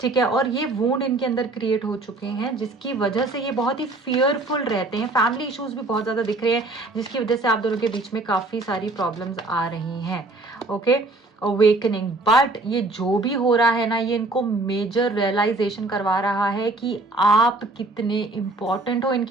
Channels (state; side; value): quieter; left; 3.0 dB